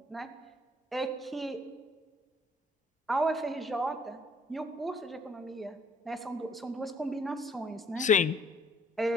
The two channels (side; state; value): both; normal; correlation 0.62